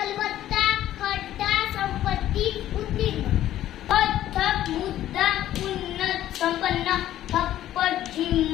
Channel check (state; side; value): quieter; right; 12.8 dB